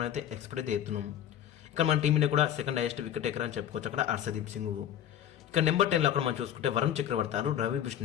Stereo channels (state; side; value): quieter; right; 10.6 dB